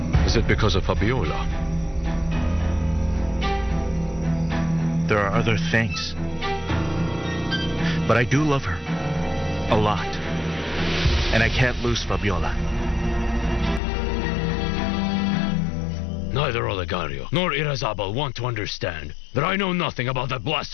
Is it because of Fabiola? There are other things. But I do love her. A lot. And I can't lose Fabiola. Neither Olegario nor Irazabal want to understand that I know nothing about that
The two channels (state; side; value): drops out; right; at 13.8 s